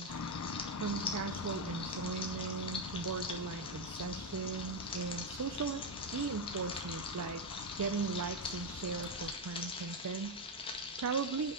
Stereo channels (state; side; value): normal; both; correlation 0.06